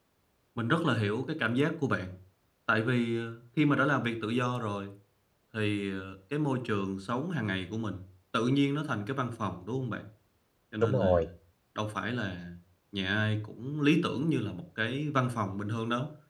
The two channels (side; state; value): both; identical; correlation 1.00